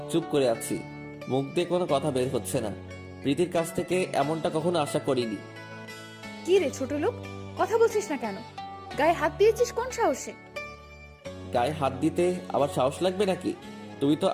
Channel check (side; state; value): both; identical; correlation 1.00